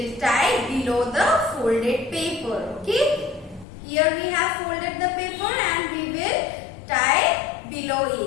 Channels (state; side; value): drops out; right; at 3.7 s